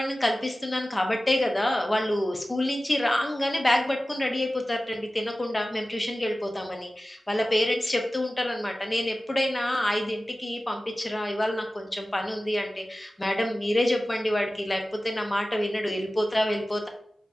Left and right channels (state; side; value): normal; both; correlation 0.96